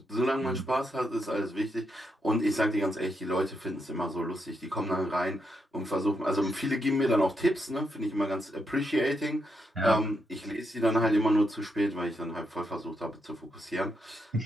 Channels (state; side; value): normal; both; correlation 0.81